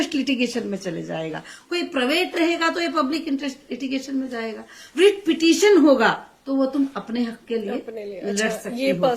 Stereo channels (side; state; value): both; identical; correlation 1.00